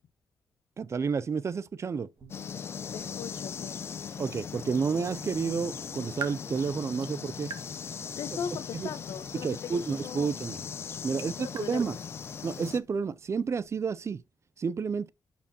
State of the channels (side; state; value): left; quieter; 3.2 dB